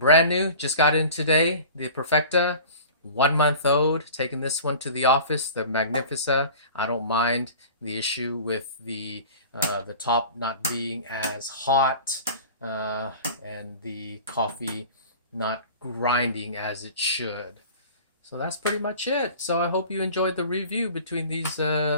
new, just got in today, the Perfecta, 1 month old, taking this one to the office, the Magnifica. I don't mind the issue with the top not being as hot and the coffee not grinding as it should. So that's pretty much it. So I hope you enjoyed the review between these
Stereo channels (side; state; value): both; inverted; correlation -0.40